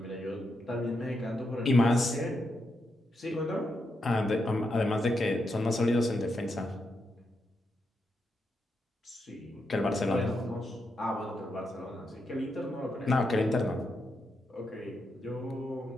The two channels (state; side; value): normal; both; correlation 0.83